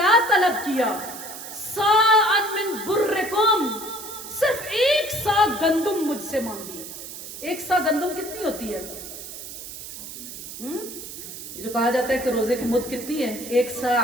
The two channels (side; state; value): right; noise; hiss, 11 dB below the sound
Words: तलब किया, साअन मिन बुर्रिकुम, सिर्फ 1 सा गंदुम मुझसे मांगी। 1 सा गंदुम कितनी होती है? जो कहा जाता है कि रोजे की मुद्द कितनी है, 1 सा